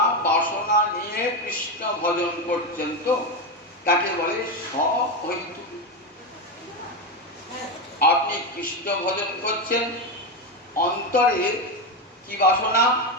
বাসনা নিয়ে কৃষ্ণ ভজন করছেন তো তাকে বলে সহৈতুকী। আপনি কৃষ্ণ ভজন করছেন, অন্তরে কি বাসনা?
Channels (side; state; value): both; normal; correlation 0.12